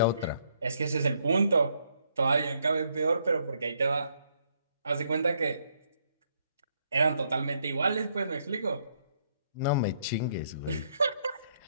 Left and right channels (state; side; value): inverted; both; correlation -0.72